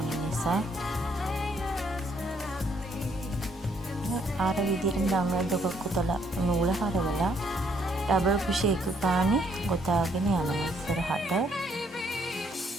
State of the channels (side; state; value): both; normal; correlation 0.69